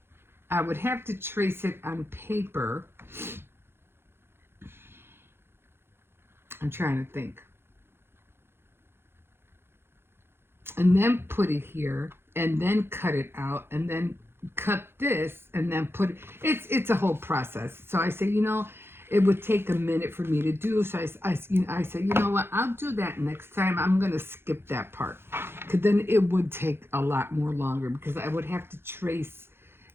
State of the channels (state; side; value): late; left; 0.11 ms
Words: I would have to trace it on paper. I'm trying to think. And then put it here, and then cut it out, and then cut this, and then put it. It's a whole process. So I say, you know, it would take a minute for me to do. So I said, you know what? I'll do that next time. I'm gonna skip that part, because then it would take a lot more longer, because I would have to trace